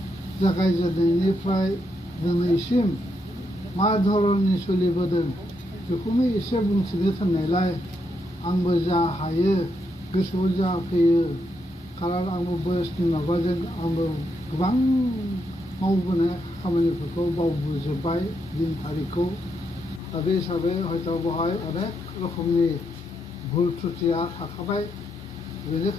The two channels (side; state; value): both; normal; correlation 0.80